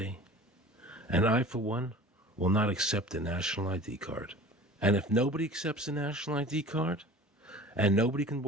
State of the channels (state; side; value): normal; both; correlation 0.42